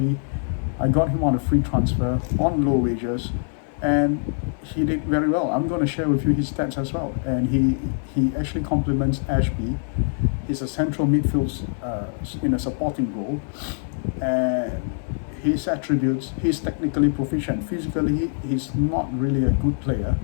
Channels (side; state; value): right; silent; 62 dB below the other